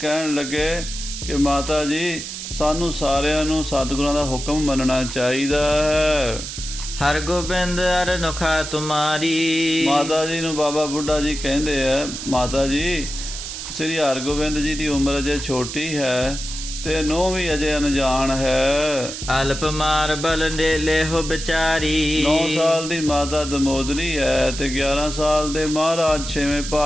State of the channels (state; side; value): noise; right; hiss, 8 dB below the sound